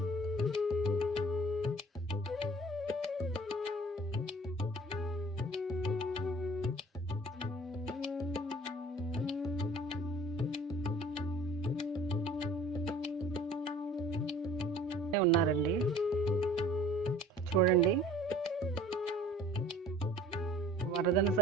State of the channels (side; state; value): both; normal; correlation 0.48